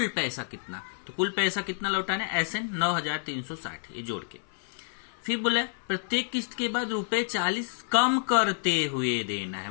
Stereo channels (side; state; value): right; silent; 57 dB below the other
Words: पैसा कितना, तो कुल पैसा कितना लौटाना है एसएन 9,360, ये जोड़ के। फिर बोला प्रत्येक किस्त के बाद रुपए 40 कम करते हुए देना